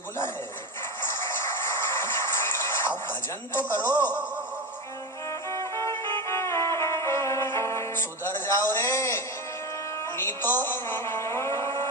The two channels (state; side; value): normal; both; correlation 0.21